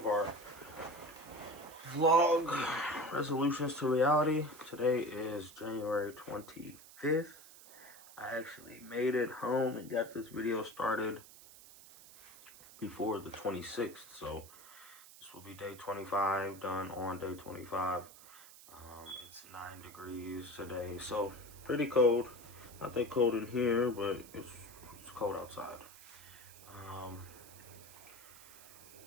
our vlog, Resolutions to Reality. Today is January 25th. I actually made it home and got this video started before the 26th, so this will be day 25, done on day 25. It's 9 degrees today, so pretty cold. Not that cold in here, but it's cold outside.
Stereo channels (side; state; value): right; noise; hiss, 19 dB below the sound